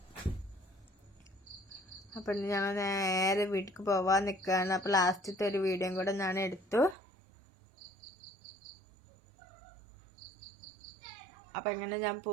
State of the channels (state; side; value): drops out; left; at 7.0 s